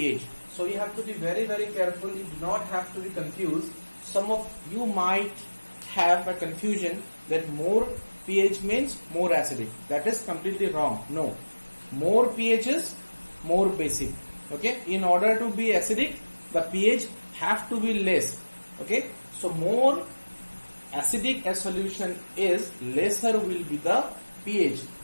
So you have to be very careful. You do not have to be confused. Some of you might have a confusion that more pH means more acidic. That is completely wrong. No, more pH is more basic. Okay, in order to be acidic, the pH have to be less. Okay, so more acidic a solution is, lesser will be the pH,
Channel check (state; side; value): inverted; both; correlation -1.00